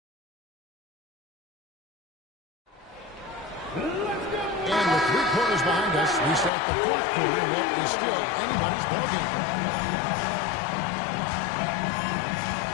And with 3 quarters behind us, we start the fourth quarter in what is still anybody's ballgame.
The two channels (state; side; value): drops out; right; at 6.5 s